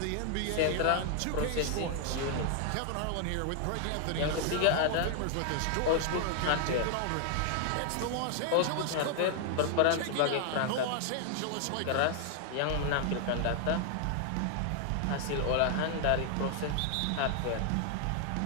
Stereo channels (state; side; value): different; both; correlation 0.00